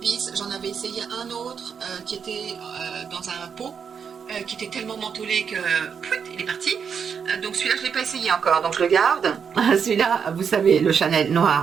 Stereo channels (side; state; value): left; quieter; 6.8 dB